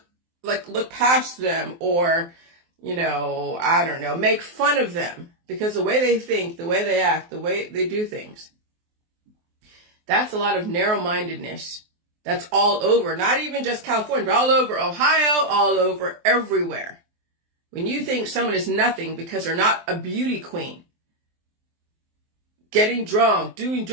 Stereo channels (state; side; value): late; left; 23 ms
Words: past them or, I don't know, make fun of them because the way they think, the way they act, the way they do things, that's a lot of narrow-mindedness. That's all over, not even just California, but all over Ohio, all over everywhere. When you think someone is nothing because they're not a beauty queen, getting drunk, doing